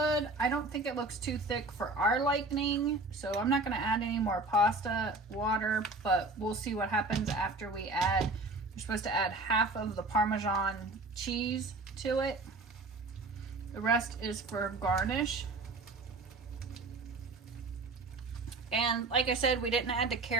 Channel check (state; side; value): quieter; left; 3.2 dB